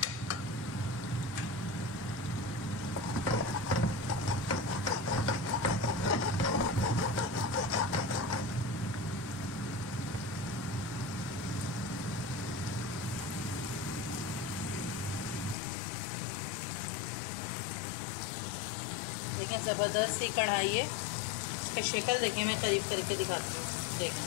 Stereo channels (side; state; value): right; drops out; at 15.6 s